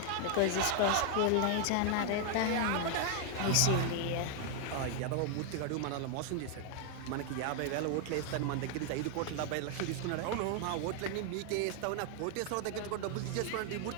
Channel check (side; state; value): both; different; correlation 0.00